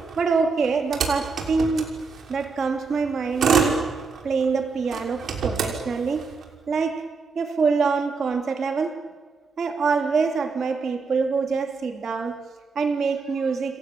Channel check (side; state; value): left; quieter; 4.7 dB